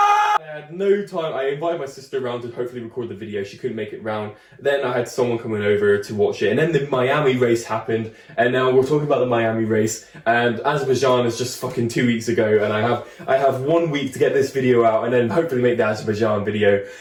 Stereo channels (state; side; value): identical; both; correlation 1.00